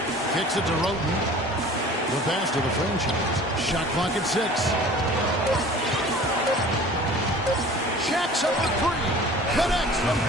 Kicks it to Roten. The pass to the franchise. Shot clock at 6. Shaq's up for 3. Connects from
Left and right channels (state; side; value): normal; both; correlation 0.45